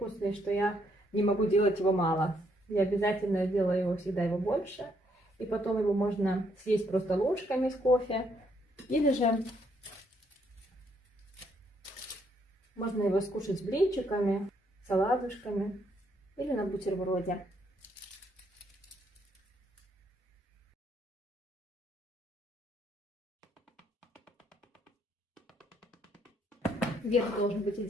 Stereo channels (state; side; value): normal; both; correlation 0.71